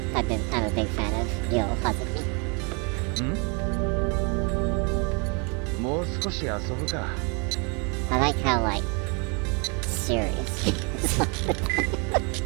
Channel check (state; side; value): quieter; left; 33.7 dB